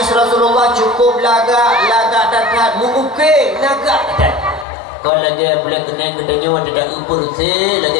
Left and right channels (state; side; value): drops out; right; at 4.7 s